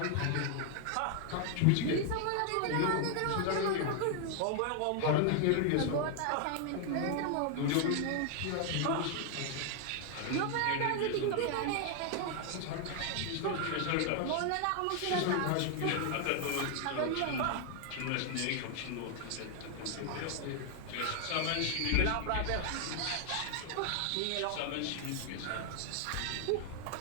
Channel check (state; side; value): different; both; correlation 0.00